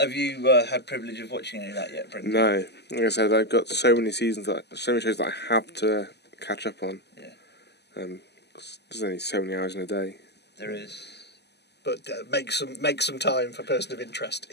you had privilege of watching any of that yet, Brendan? No. Like I said, I've got so many shows that I have to catch up on. Yeah. There's only so many hours in a day. There is. But make some time for Person of Interest.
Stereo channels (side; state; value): right; late; 0.49 ms